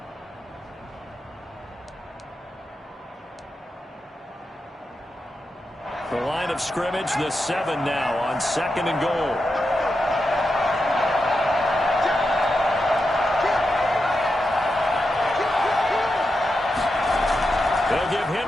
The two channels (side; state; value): both; normal; correlation 0.88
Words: The line of scrimmage, the 7 now on 2nd and goal. They'll give